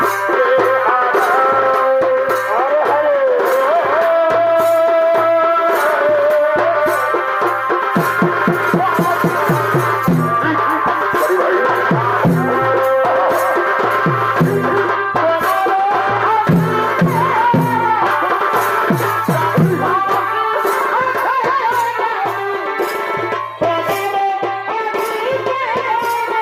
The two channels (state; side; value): identical; both; correlation 1.00